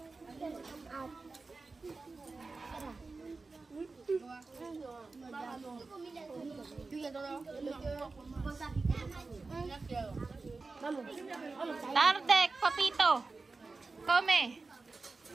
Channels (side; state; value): left; quieter; 3.9 dB